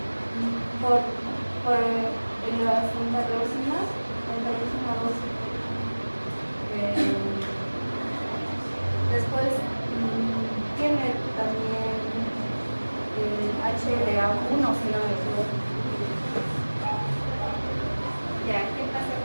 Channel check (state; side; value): inverted; both; correlation -1.00